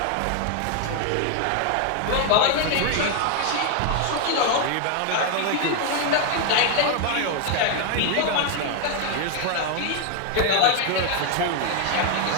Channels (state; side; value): different; both; correlation 0.01